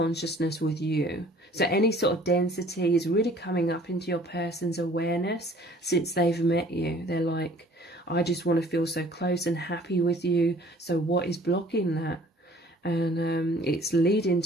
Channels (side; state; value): both; normal; correlation 0.53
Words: with you. So any sort of density is really coming up into your person's awareness since they've met you. They're like, I just want to feel so close and happy with you. So what is blocking that? And it's leading